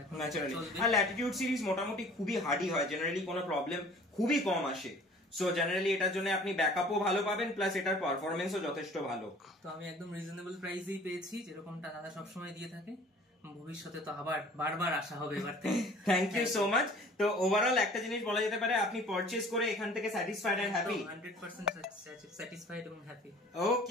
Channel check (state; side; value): normal; both; correlation 0.49